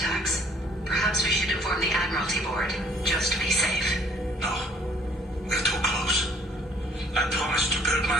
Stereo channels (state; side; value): normal; both; correlation 0.60